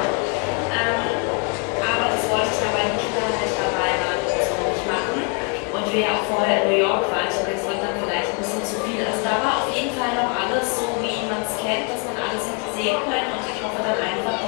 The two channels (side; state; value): right; quieter; 36.4 dB